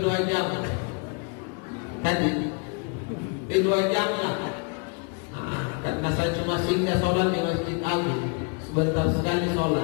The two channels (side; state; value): right; quieter; 34.6 dB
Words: 2 jam. Tadi di 2 jam lah. Karena saya cuma singgah sholat di Masjid Agung, sebentar sekali